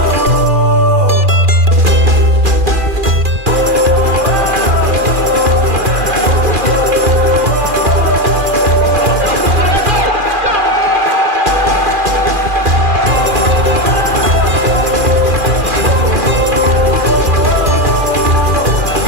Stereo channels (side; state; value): left; late; 2.4 ms